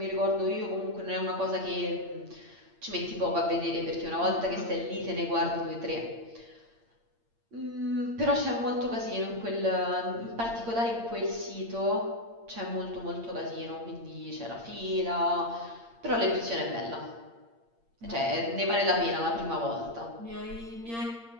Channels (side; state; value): left; late; 8.7 ms